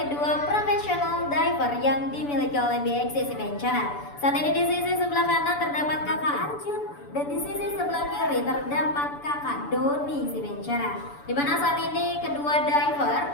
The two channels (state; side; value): late; right; 6.9 ms